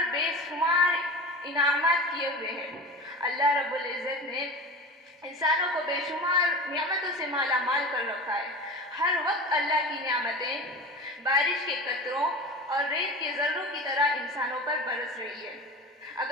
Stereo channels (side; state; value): both; normal; correlation 0.33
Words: بے شمار انعامات کیے ہوئے ہیں۔ اللہ رب العزت نے انسانوں کو بے شمار نعمتوں سے مالا مال کر رکھا ہے۔ ہر وقت اللہ کی نعمتیں بارش کے قطروں اور ریت کے ذروں کی طرح انسانوں پر برس رہی ہے۔